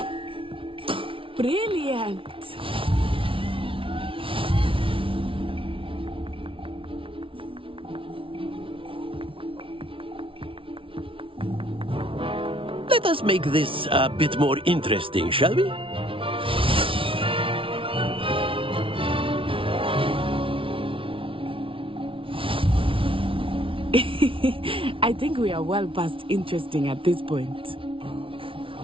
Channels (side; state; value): left; late; 0.25 ms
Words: Brilliant. Let us make this a bit more interesting, shall we? I think we are well past interesting at this point.